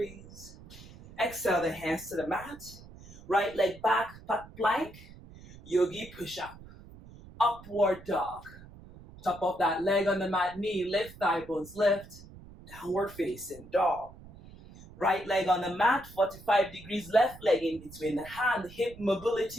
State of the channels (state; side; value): noise; right; rumble, 19 dB below the sound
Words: Exhale the hands to the mat. Right leg back, pat plank. Yogi push up. Upward dog. Top of that leg on the mat, knee lift, thigh bones lift. Downward facing dog. Right leg on the mat, 45 degrees, left leg in between the hand, hip